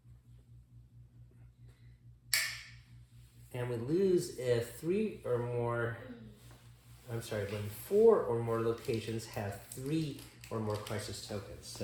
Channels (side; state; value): both; identical; correlation 1.00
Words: And we lose if 3 or more, I'm sorry, when 4 or more locations have 3 or more crisis tokens.